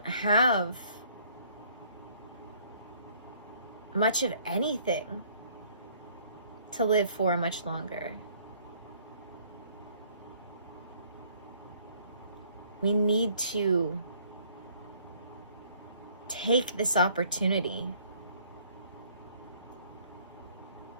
have much of anything to live for much longer. We need to take this opportunity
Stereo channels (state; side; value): inverted; both; correlation -0.61